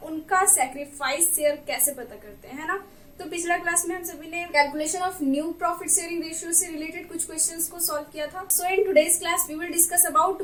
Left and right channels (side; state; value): both; identical; correlation 1.00